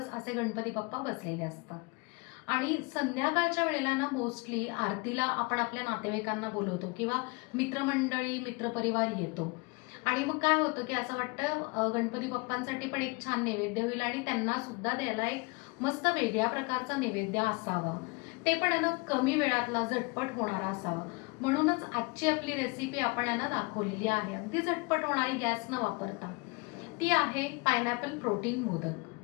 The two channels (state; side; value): quieter; right; 28.3 dB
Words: असे गणपती बाप्पा बसलेले असतात. आणि संध्याकाळच्या वेळेला ना मोस्टली आरतीला आपण आपल्या नातेवाईकांना बोलवतो किंवा मित्रमंडळी, मित्रपरिवार येतो. आणि मग काय होतं की असं वाटतं गणपती बाप्पांसाठी पण एक छान नैवेद्य होईल आणि त्यांना सुद्धा द्यायला एक मस्त वेगळ्या प्रकारचा नैवेद्य असावा. ते पण आहे ना कमी वेळातला झटपट होणारा असावा. म्हणूनच आजची आपली रेसिपी आपण यांना दाखवलेली आहे, अगदी झटपट होणारी, गॅस न वापरता. ती आहे पायनॅपल प्रोटीन